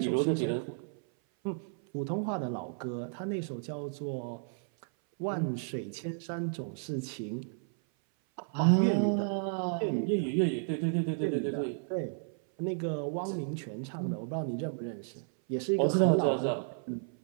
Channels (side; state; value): left; silent; 56 dB below the other